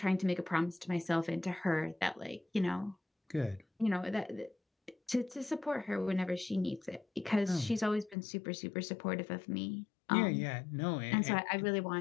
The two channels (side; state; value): right; drops out; at 8.2 s